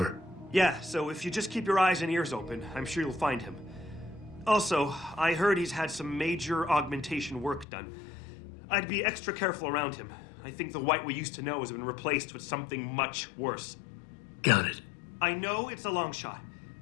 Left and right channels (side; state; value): right; drops out; at 7.7 s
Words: Yeah, so if you just keep your eyes and ears open, I'm sure you'll find him. Also, I heard he's had some major augmentation work done. I'd be extra careful around him. I think the White we used to know has been replaced with something much worse. Got it. I know it's a long shot,